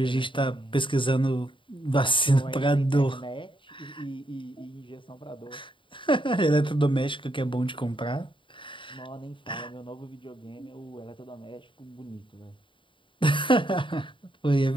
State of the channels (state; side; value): late; right; 0.24 ms